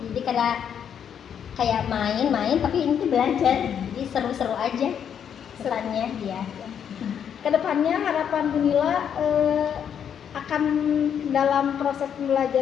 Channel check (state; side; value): quieter; right; 8.4 dB